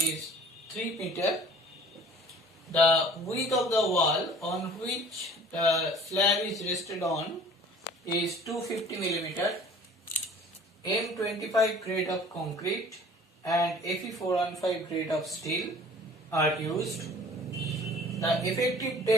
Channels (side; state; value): both; normal; correlation 0.48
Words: 3 meter. The width of the wall on which the slab is rested on is 250 mm. M25 grade of concrete and Fe415 grade of steel are used. The effective